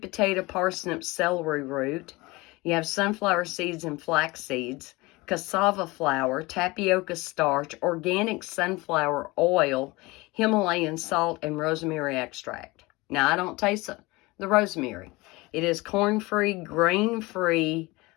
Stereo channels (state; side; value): quieter; right; 22.8 dB